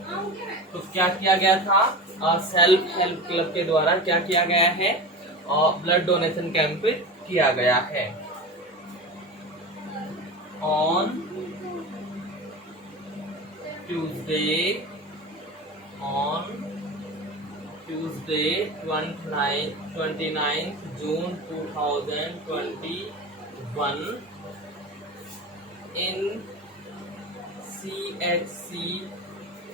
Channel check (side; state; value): both; normal; correlation 0.28